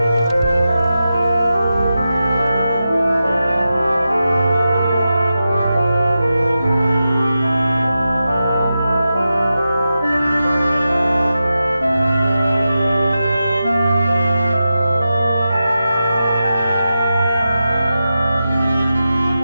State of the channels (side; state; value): both; inverted; correlation -0.91